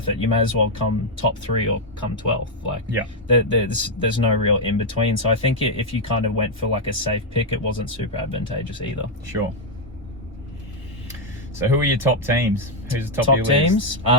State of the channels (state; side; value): normal; both; correlation 0.00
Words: it. You may as well come top 3 or come 12th. Like, there's no real in between. So I think if you kind of went for like a safe pick, it wasn't super advantageous either. Sure. So who are your top teams? Who's the top of your teams?